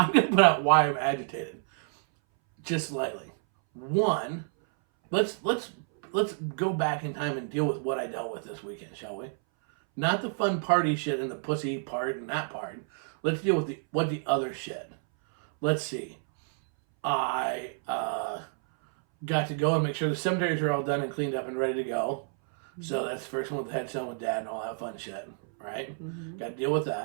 going to put out why I'm agitated. Just slightly. One, let's go back in time and deal with what I dealt with this weekend, shall we? Not the fun party shit and the pussy part and that part. Let's deal with the other shit. Let's see. I got to go and make sure the cemeteries are all done and cleaned up and ready to go. Mm-hmm. So that's the first one with the headstone with Dad and all that fun shit, right? Mm-hmm. Got to deal with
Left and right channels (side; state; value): left; silent; 58 dB below the other